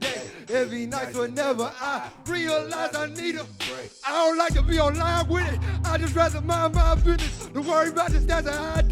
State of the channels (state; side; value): identical; both; correlation 1.00